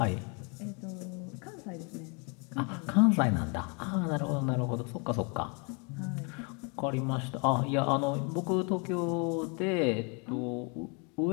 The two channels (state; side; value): quieter; right; 34.3 dB